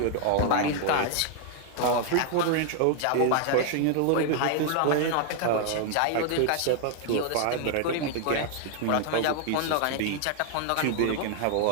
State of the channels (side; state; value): both; different; correlation 0.00